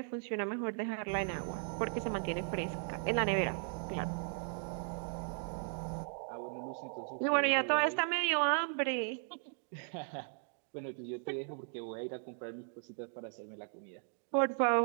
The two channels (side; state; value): left; silent; 53 dB below the other